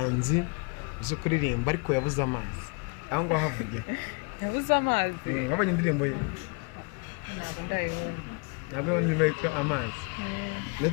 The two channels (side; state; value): right; quieter; 33.1 dB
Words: uzo kuririmba ariko yabuze amazi aho ngo havuge yabuze amazi wabonye indirimbo ye ntabwo ndimeka amazi